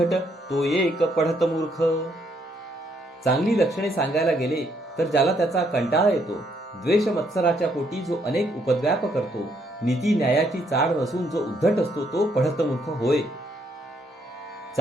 तो एक पढत मूर्ख. चांगली लक्षणे सांगायला गेले तर ज्याला त्याचा कंटाळा येतो, द्वेष मत्सराच्या पोटी जो अनेक उपद्व्याप करतो, नीती न्यायाची चाड नसून जो उद्धट असतो तो पढत मूर्ख होय.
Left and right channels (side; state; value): both; normal; correlation 0.71